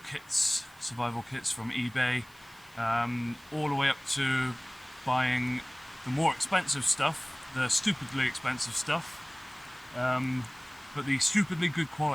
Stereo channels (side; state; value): right; noise; hiss, 26 dB below the sound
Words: from eBay, all the way up to buying the more expensive stuff, the stupidly expensive stuff, but the stupidly good